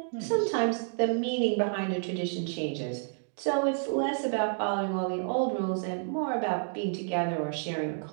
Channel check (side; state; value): left; silent; digital silence